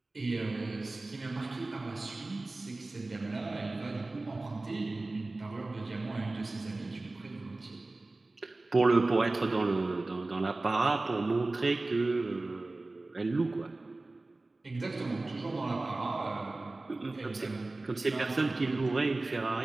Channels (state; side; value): quieter; left; 3.1 dB